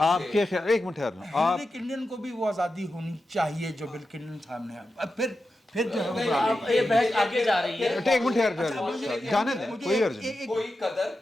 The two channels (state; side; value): normal; both; correlation 0.91